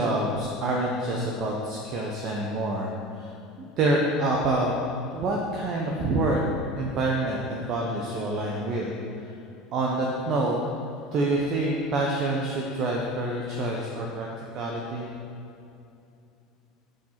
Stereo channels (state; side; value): normal; both; correlation 0.36